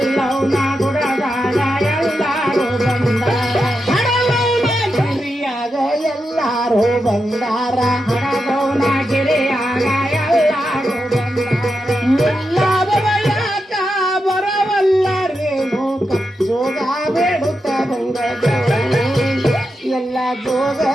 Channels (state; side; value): normal; both; correlation 0.87